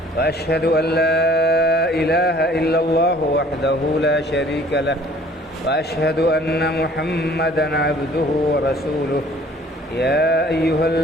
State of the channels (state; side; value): normal; both; correlation 0.54